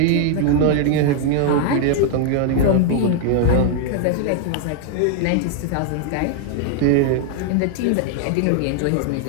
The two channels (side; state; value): both; different; correlation 0.00